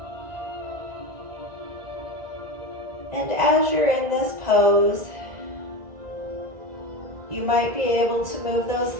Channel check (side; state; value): left; late; 1.9 ms